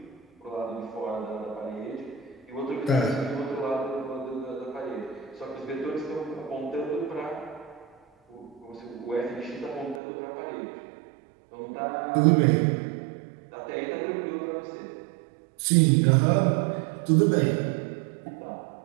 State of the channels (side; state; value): left; drops out; at 10.0 s